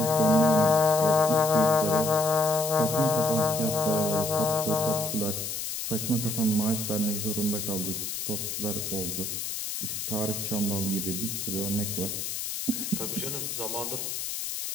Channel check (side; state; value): left; noise; hiss, 4 dB below the sound